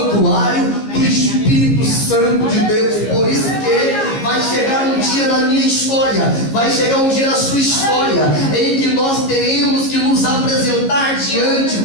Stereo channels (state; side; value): late; right; 15 ms